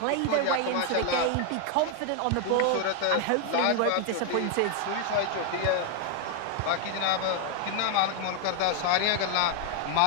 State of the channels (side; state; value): both; different; correlation 0.01